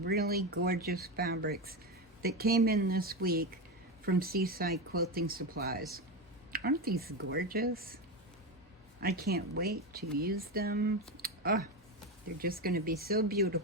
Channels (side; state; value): both; normal; correlation 0.15